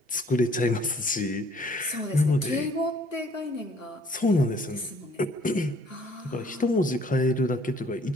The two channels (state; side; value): normal; both; correlation 0.59